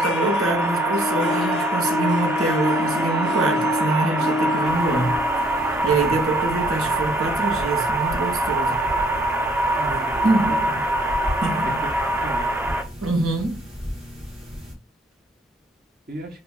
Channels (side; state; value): both; normal; correlation 0.63